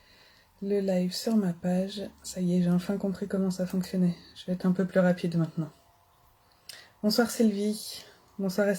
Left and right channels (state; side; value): identical; both; correlation 1.00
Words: le live sur ma page. Ça y est, j'ai enfin compris comment ça fonctionnait. Je vais être un peu plus rapide maintenant. Bonsoir Sylvie, bonsoir